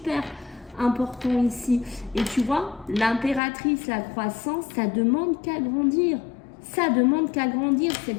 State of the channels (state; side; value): drops out; right; at 3.4 s